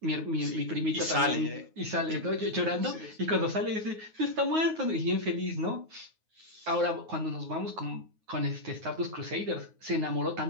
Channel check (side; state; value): left; late; 9.4 ms